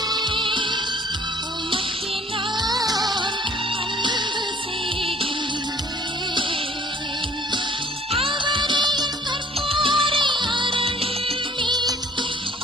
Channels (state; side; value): normal; both; correlation 0.56